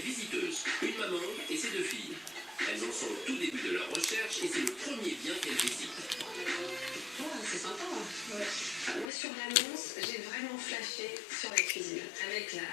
visiteuses, une maman et ses deux filles. Elles en sont au tout début de leur recherche et c'est le premier bien qu'elles visitent. Oh, c'est sympa. Ouais. Moi sur l'annonce, j'ai vraiment flashé sur la cuisine. Avec la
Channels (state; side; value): drops out; right; at 9.1 s